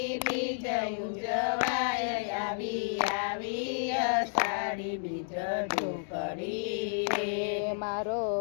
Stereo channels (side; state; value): right; silent; digital silence